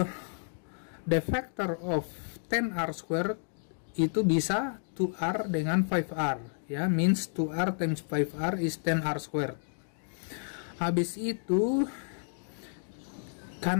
The factor of 10R squared itu bisa 2R dengan 5R, ya, means 2R times 5R is 10R squared. Habis itu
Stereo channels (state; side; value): silent; right; digital silence